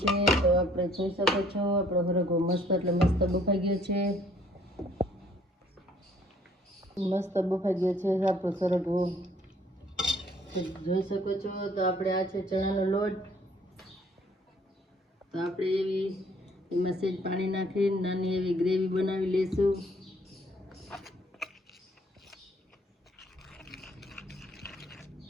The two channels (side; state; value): both; normal; correlation 0.61